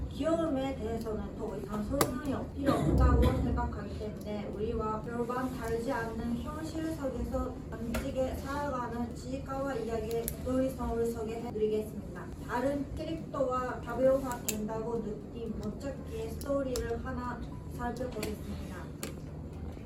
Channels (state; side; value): identical; both; correlation 1.00